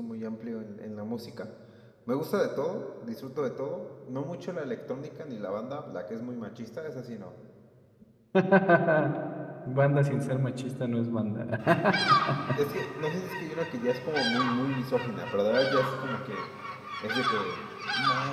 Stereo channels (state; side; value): identical; both; correlation 1.00